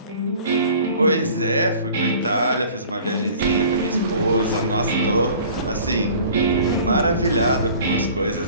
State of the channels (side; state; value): both; inverted; correlation -0.47